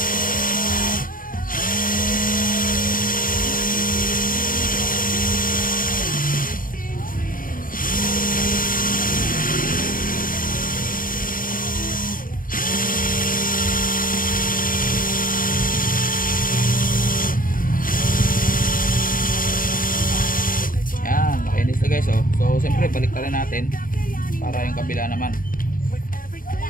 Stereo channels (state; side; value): late; right; 0.40 ms